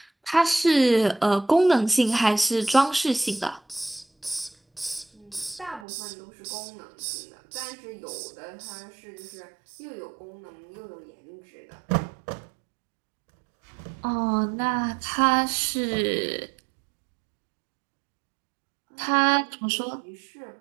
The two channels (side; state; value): left; drops out; at 5.9 s